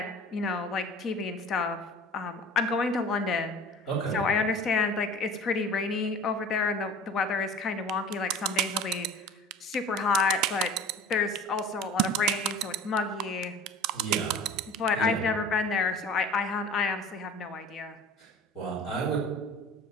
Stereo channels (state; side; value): normal; both; correlation 0.42